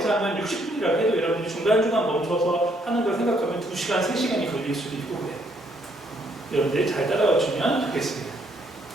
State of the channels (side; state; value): both; normal; correlation 0.70